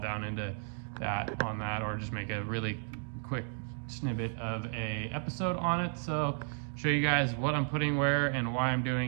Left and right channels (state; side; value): silent; left; 56 dB below the other